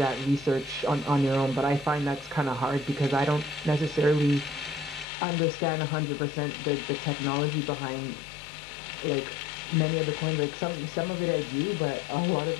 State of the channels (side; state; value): right; drops out; at 5.1 s